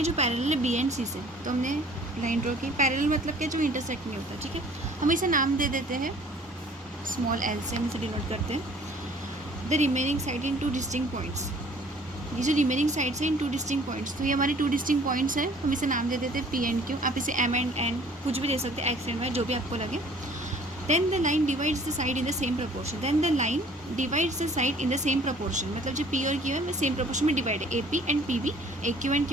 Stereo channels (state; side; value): normal; both; correlation 0.53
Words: जो पैरेलल है B एंड C से, तो हमने लाइन ड्रॉ की। पैरेलल मतलब क्या, जो इंटरसेक्ट नहीं होता, ठीक है। हम इसे नाम दे देते हैं स्मॉल l से, हम इसे डिनोट करते हैं the remaining side in two distinct points. ये जो रिमेनिंग साइड्स है इन टू डिस्टिंक्ट पॉइंट्स, तो ये हमारी 2 डिस्टिंक्ट पॉइंट्स है, हम इसे नाम दे देते हैं P एंड Q। आप इसे M एंड N कुछ भी दे सकते हैं, X एंड Y, जो भी आपको लगे। Then the line divides the side in the same proportion. Then the line divides the side in the same proportion. मतलब जो P और Q है, सेम प्रोपोर्शन में डिवाइड है, AP and PB, AQ and